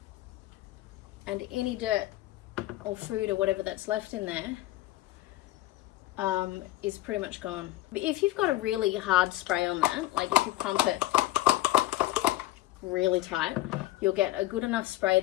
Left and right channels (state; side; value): quieter; right; 16.4 dB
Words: And any dirt or food or whatever that's left in there is pretty much gone. But if you've got a really hard spray on that, like if you pump it really tight, you'll get a good enough spray